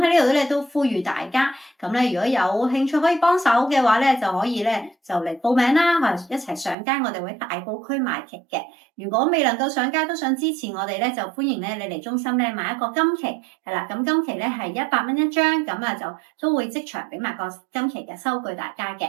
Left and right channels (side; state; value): left; drops out; at 6.8 s